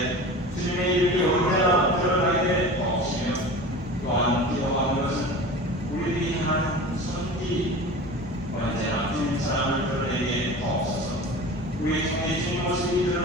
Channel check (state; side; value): normal; both; correlation 0.35